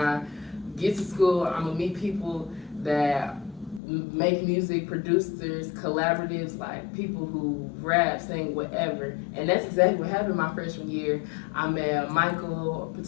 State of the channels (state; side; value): drops out; right; at 3.8 s